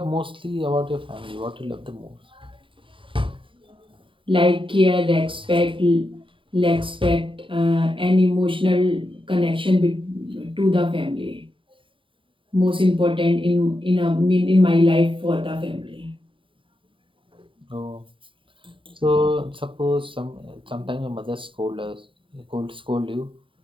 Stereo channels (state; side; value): late; left; 0.25 ms